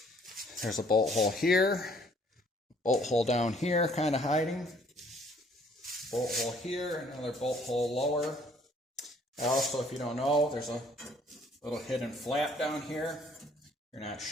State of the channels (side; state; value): both; normal; correlation 0.60